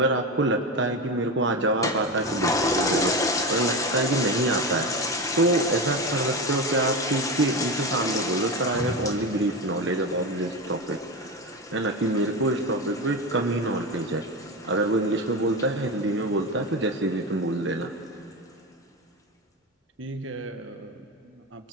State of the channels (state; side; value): normal; both; correlation 0.20